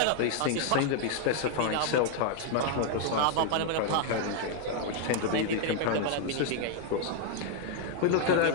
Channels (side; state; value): both; different; correlation 0.00